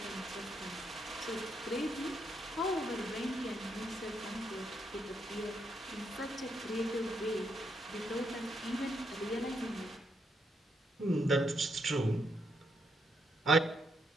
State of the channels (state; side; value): normal; both; correlation 0.78